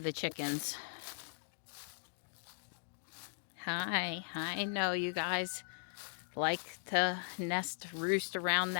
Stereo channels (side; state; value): right; silent; digital silence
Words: chickens. Hi. I know you guys like to roost around